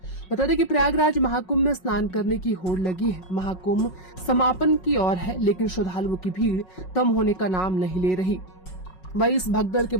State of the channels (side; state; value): right; late; 5.4 ms